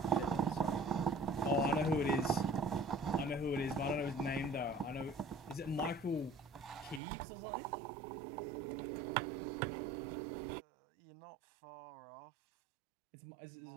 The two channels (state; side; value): drops out; left; at 7.0 s